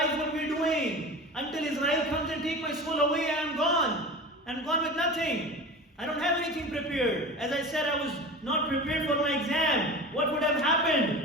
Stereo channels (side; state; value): both; normal; correlation 0.33